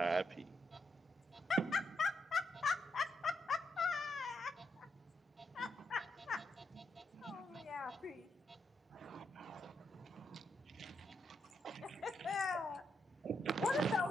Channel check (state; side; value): normal; both; correlation 0.81